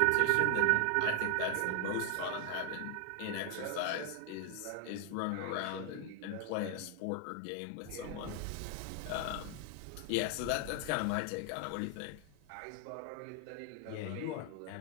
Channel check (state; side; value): different; both; correlation 0.00